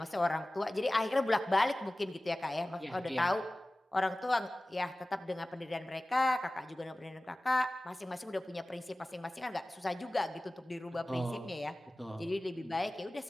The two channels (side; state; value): both; normal; correlation 0.97